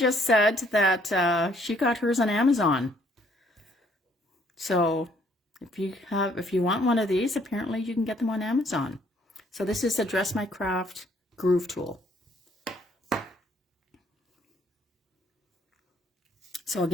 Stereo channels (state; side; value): normal; both; correlation 0.65